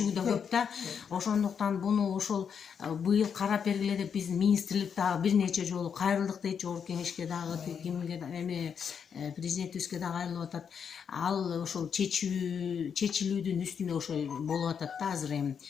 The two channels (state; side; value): quieter; right; 7.1 dB